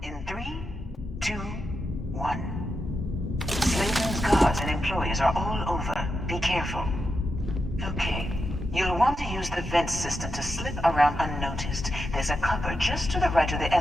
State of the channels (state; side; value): normal; both; correlation 0.87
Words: in 3, 2, 1. Slayton's guards and employees are all over. Be careful. Okay. You'll want to use the vent system to slip around unnoticed. There's a cupboard just to the right of the